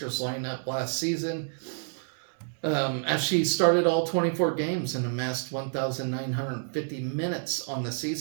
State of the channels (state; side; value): silent; left; 59 dB below the other